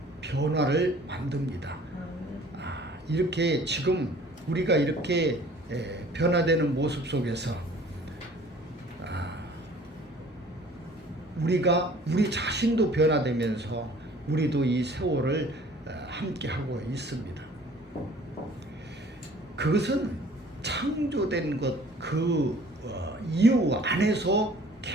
변화를 만듭니다. 이렇게 지금 우리가 이렇게 변화되는 모습 속에서 우리가 우리 자신도 변화되면서 우리도 이 세월을 함께 하고 있습니다. 그것은 창조된 것 그 이유 안에서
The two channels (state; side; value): normal; both; correlation 0.51